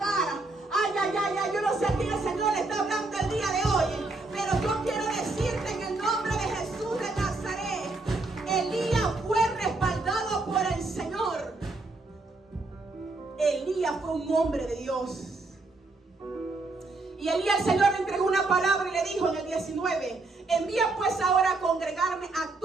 Ay, ay, ay, ay, yo no sé a quién el Señor le está hablando el día de hoy, pero yo quiero decirte en el nombre de Jesús de Nazaret: Elías fue respaldado por el Señor. Elías fue un hombre de Dios. Y Elías, el Señor le entregó una palabra y le dijo en el 19: envía pues ahora a congregarme a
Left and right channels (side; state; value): left; quieter; 3.3 dB